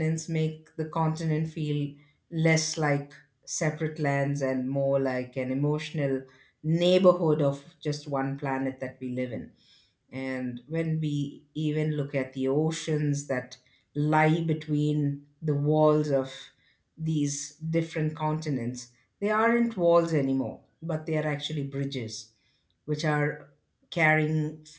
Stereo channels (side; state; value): both; identical; correlation 1.00